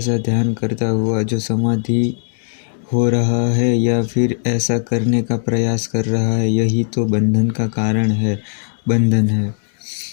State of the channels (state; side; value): silent; right; 66 dB below the other